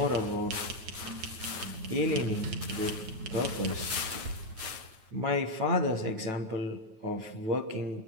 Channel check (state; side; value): late; left; 9.2 ms